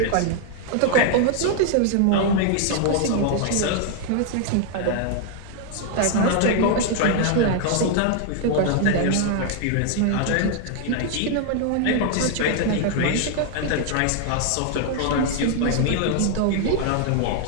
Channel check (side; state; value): both; different; correlation 0.00